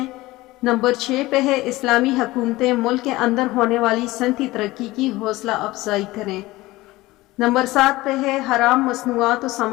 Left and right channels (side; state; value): right; quieter; 19.1 dB